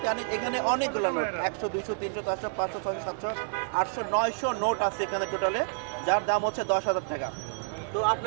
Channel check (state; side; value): silent; left; digital silence